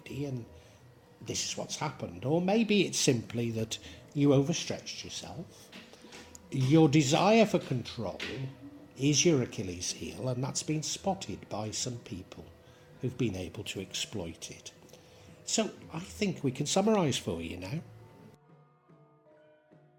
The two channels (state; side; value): identical; both; correlation 1.00